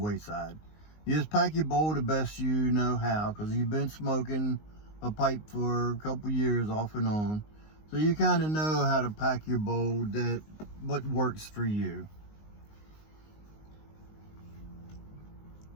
You just pack your bowl the best you know how, because you've been smoking a pipe for a couple years off and on. So you kind of know how to pack your bowl, what works for you.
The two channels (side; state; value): right; late; 19 ms